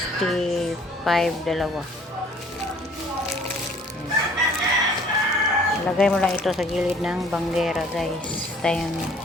dalawa. Lagay mo lang ito sa gilid ng banggera guys. Tayo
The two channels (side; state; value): both; normal; correlation 0.56